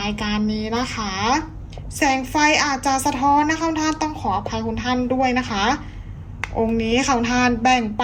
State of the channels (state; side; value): identical; both; correlation 1.00